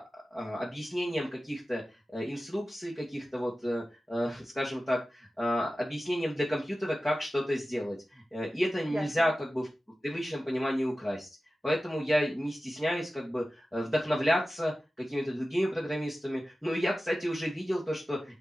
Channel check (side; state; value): both; normal; correlation 0.95